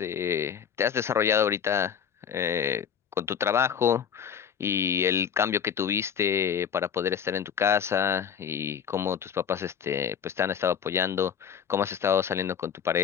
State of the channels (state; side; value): quieter; right; 7.8 dB